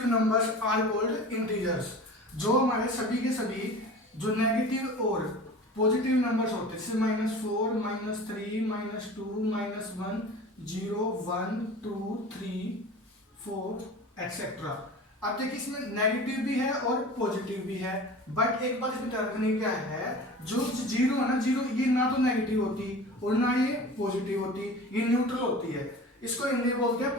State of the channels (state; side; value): normal; both; correlation 0.37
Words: numbers are called integers. जो हमारे सभी के सभी जो नेगेटिव और पॉजिटिव नंबर्स होते हैं, जैसे -4 -3 -2 -1 0 1 2 3 4 एक्सेट्रा। अब देखिए इसमें नेगेटिव भी है और पॉजिटिव भी है, बट एक बात इसमें ध्यान रखने क्या है, जो जीरो है ना, जीरो ये ना तो नेगेटिव होती और ना ये पॉजिटिव होती, ये न्यूट्रल होती है। इसको हिंदी बोलते हैं